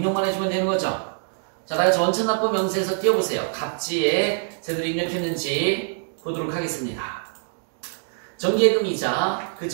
해주면 되는 거죠. 자, 다같이 원천납부 명세서 띄워보세요. 갑지에 제대로 입력했는지 보도록 하겠습니다. 정기예금이자,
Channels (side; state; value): left; silent; digital silence